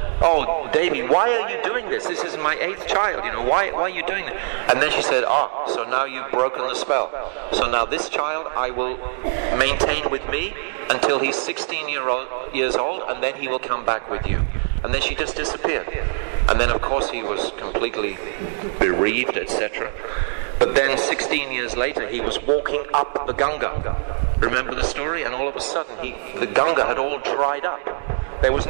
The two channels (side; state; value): left; silent; digital silence